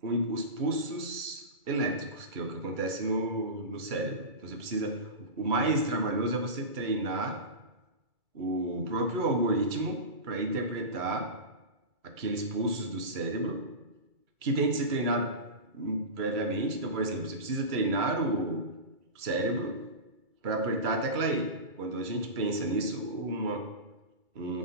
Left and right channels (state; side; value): late; left; 2.3 ms